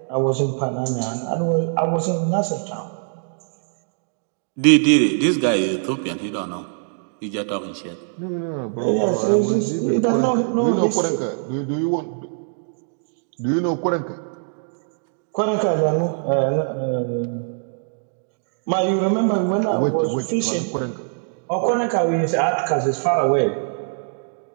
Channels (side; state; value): left; silent; digital silence